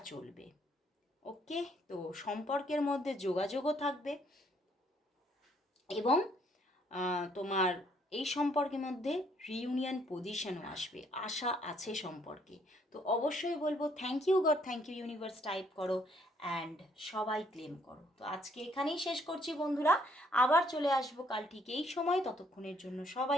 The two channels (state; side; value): normal; both; correlation 0.67